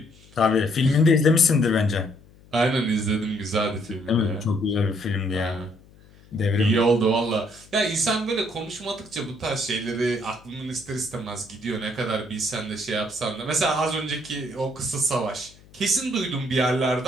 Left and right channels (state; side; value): noise; left; hum, 25 dB below the sound